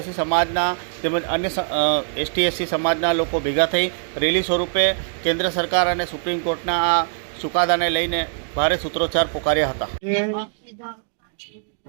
સમાજના તેમજ અન્ય એસટી સમાજના લોકો ભેગા થઈ રેલી સ્વરૂપે કેન્દ્ર સરકાર અને સુપ્રીમ કોર્ટના આ ચુકાદાને લઈને ભારે સૂત્રોચ્ચાર પોકાર્યા હતા.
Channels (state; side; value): silent; left; digital silence